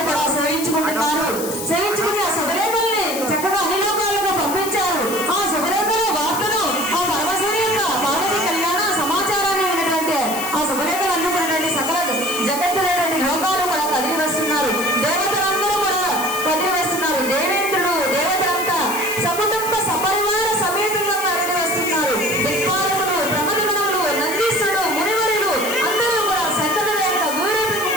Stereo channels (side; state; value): left; noise; hiss, 8 dB below the sound